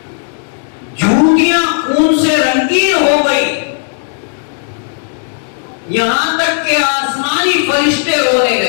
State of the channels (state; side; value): silent; right; digital silence